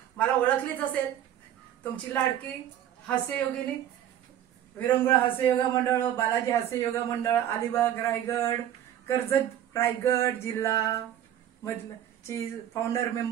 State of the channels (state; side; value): quieter; left; 11.2 dB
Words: मला ओळखलीच असेल तुमची लाडकी हास्ययोगिनी विरंगुळा हास्य योगा मंडळ, बालाजी हास्य योगा मंडळ, अलिबाग रायगड, कर्जत रायगड जिल्हा मधलं ची फाउंडर